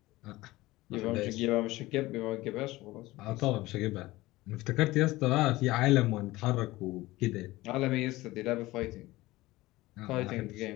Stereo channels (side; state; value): right; quieter; 18.9 dB